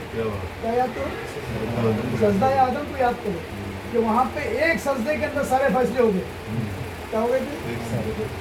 क्या याद करो? सजदा आदम को याद करो कि वहाँ पे एक सजदे के अंदर सारे फैसले हो गए। क्या हो गए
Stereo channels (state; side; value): identical; both; correlation 1.00